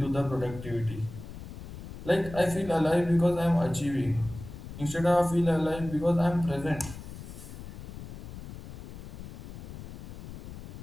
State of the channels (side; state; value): left; noise; rumble, 11 dB below the sound